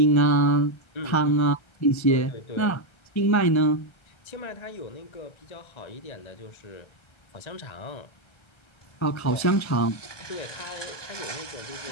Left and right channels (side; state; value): right; late; 1.3 ms